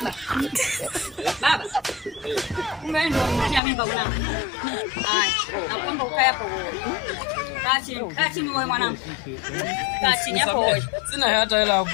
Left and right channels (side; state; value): right; drops out; at 3.6 s